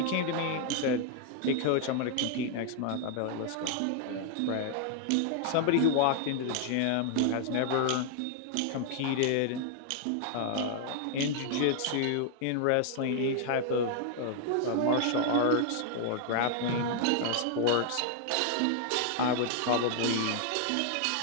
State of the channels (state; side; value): different; both; correlation 0.00